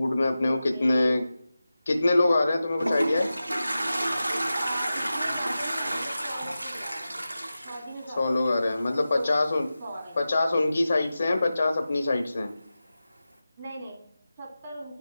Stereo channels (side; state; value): both; inverted; correlation -0.94